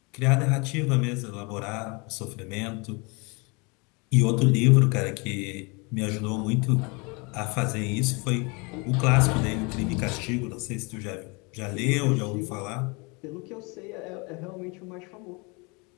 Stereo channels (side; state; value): right; quieter; 29.6 dB